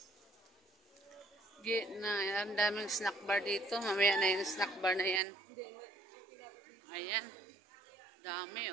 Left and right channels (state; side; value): drops out; left; at 5.2 s